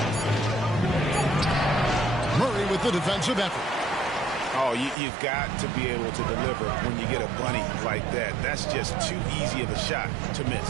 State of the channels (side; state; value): left; drops out; at 5.0 s